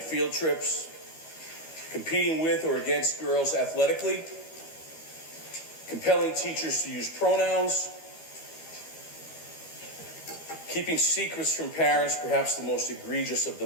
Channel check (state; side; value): late; right; 13 ms